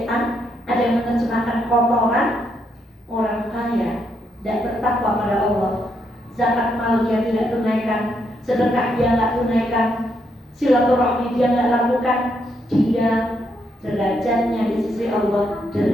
ada yang menerjemahkan kotoran. Orang kaya tidak bertakwa pada Allah, zakat mal dia tidak tunaikan, sedekah dia tidak tunaikan, silaturahmi dia tidak lakukan, dia derajatnya di sisi Allah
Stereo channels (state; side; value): normal; both; correlation 0.77